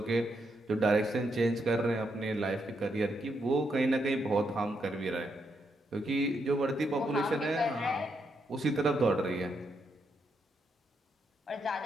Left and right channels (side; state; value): both; normal; correlation 0.80